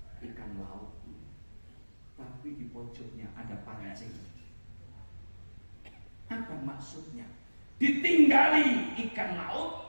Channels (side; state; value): both; inverted; correlation -1.00